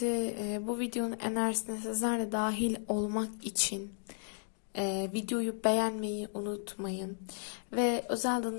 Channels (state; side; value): silent; right; digital silence